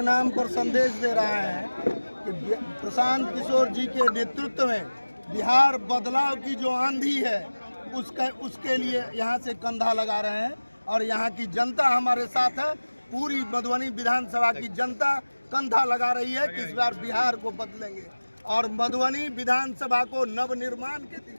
नाम पर संदेश दे रहा है कि प्रशांत किशोर जी के नेतृत्व में बिहार बदलाव की जो आंधी है उसके लिए यहाँ से कंधा लगा रहे हैं और यहाँ की जनता हमारे साथ है। पूरी मधुबनी विधानसभा की जनता कंधा लगा रही है कि इस बार बिहार को बदलेंगे और मधुबनी विधानसभा को नवनिर्माण के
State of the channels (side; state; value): both; inverted; correlation -1.00